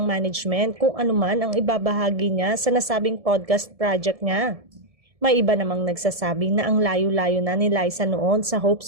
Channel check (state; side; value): late; left; 1.7 ms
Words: management kung anuman ang ibabahagi niya sa nasabing podcast project niya. May iba namang nagsasabi na ang layo-layo na ni Liza noon sa Hope